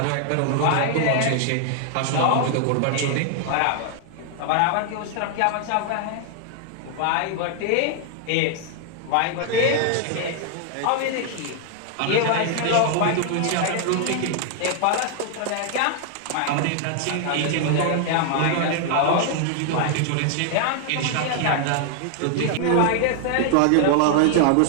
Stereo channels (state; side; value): different; both; correlation 0.00